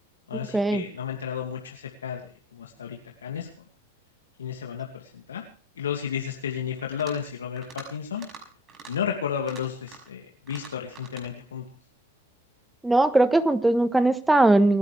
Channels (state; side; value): normal; both; correlation 0.68